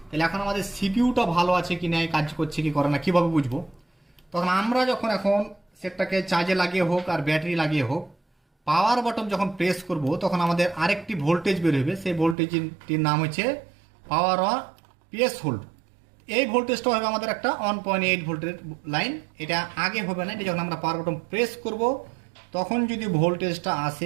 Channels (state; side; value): drops out; left; at 12.4 s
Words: তাহলে এখন আমাদের সিপিইউটা ভালো আছে কি না, কাজ করছে কি করে না কীভাবে বুঝবো, তখন আমরা যখন এখন সেটটাকে চার্জে লাগিয়ে হোক আর ব্যাটারি লাগিয়ে হোক পাওয়ার বটন যখন প্রেস করব তখন আমাদের আরেকটি ভোল্টেজ বের হবে, সেই ভোল্টেজটির নাম হচ্ছে পাওয়ার অন পিএস হোল্ড। এই ভোল্টেজটা হবে আমাদের একটা 1.8 ভোল্টের লাইন, এটা আগে হবে না, এটা যখন আমরা পাওয়ার বটন প্রেস করব তখন যদি ভোল্টেজটা